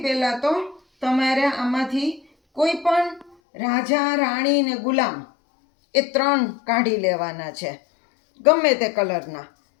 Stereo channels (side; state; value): right; drops out; at 3.4 s